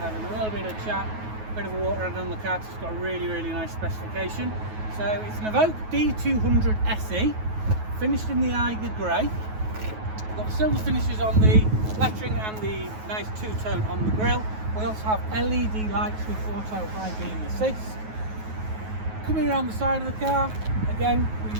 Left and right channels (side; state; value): left; late; 9.3 ms